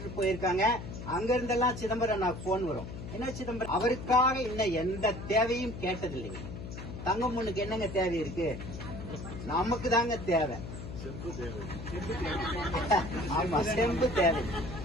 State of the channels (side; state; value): left; noise; hum, 9 dB below the sound